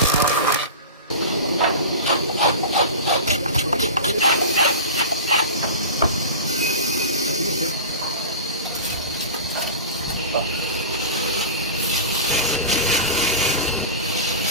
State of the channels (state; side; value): inverted; both; correlation -0.31